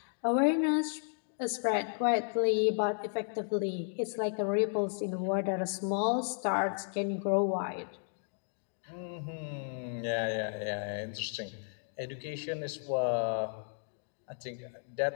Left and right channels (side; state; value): right; silent; digital silence